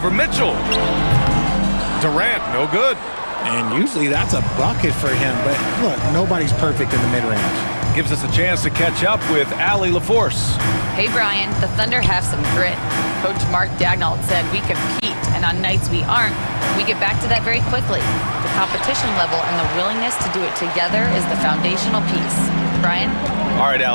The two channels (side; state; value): both; inverted; correlation -1.00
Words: Mitchell. Durant, no good. And usually that's a bucket for him, but look, nobody's perfect in the mid-range. Gives us a chance to catch up with Allie LaForce. Hey, Brian, the Thunder have some grit. Coach Mark Daigneault said we compete, and on nights we aren't, we get back to that very quickly. The competition level and the willingness to do it together is the foundational piece. Brian? All right,